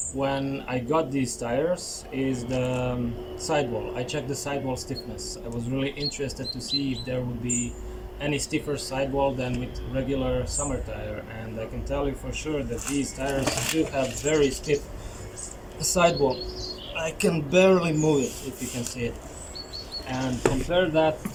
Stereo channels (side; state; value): both; identical; correlation 1.00